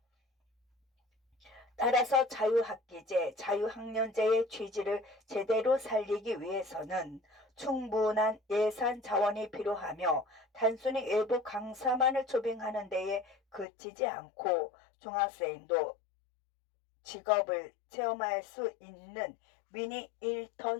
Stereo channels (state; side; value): drops out; right; at 13.7 s